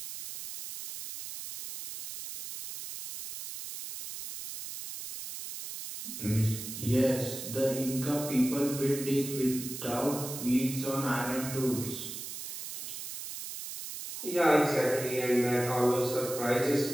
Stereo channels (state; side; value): noise; right; hiss, 8 dB below the sound